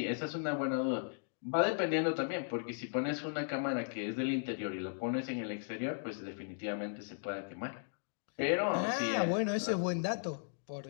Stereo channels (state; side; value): silent; right; digital silence